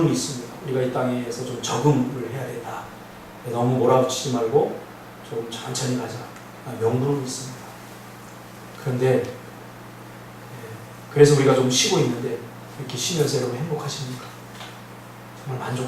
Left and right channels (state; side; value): identical; both; correlation 1.00